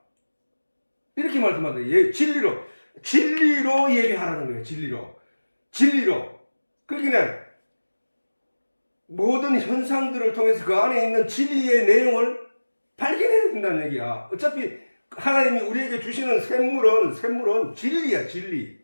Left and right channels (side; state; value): both; inverted; correlation -1.00